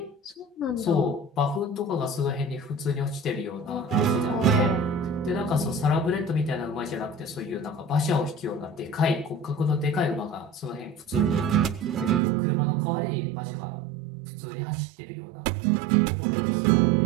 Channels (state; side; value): drops out; left; at 12.2 s